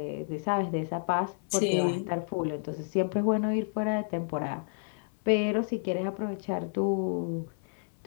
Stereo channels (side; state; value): right; silent; 56 dB below the other